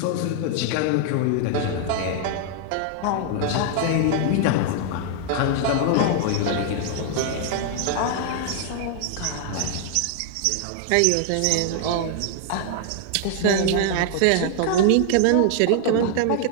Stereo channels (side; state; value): both; different; correlation 0.00